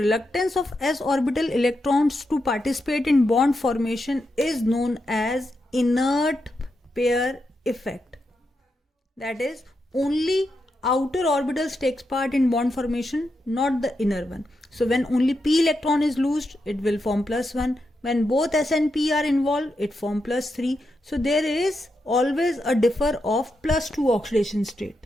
of s orbital electrons to participate in bond formation, is known as inert pair effect. That is, only outer orbitals takes part in bond formation, not the inner one. So when only p electron is loosed, it will form plus 1. When both s and p are involved, it form plus 3. So there is always a differ of plus 2 oxidation state.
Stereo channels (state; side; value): normal; both; correlation 0.85